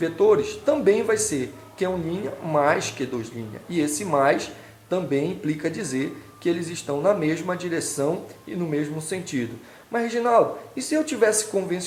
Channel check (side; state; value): both; identical; correlation 1.00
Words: também vai ser Q1' mais Q2'. E esse mais também implica dizer que eles estão na mesma direção e no mesmo sentido. Mas, Reginaldo, e se eu tivesse